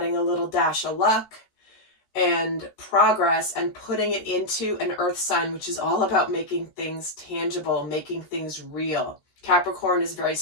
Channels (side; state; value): right; late; 14 ms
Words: a little dash of luck and progress, and putting it into an earth sign, which is all about making things tangible, making things real. Capricorn is very